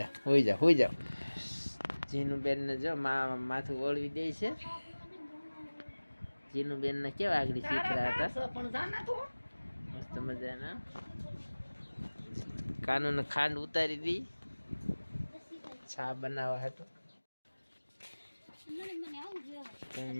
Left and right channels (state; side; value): inverted; both; correlation -1.00